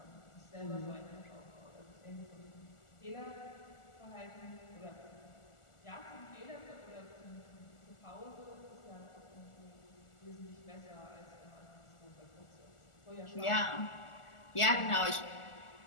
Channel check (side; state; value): right; late; 1.4 ms